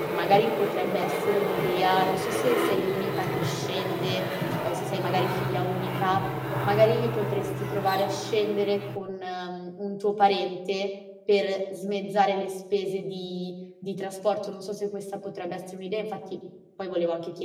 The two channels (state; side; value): identical; both; correlation 1.00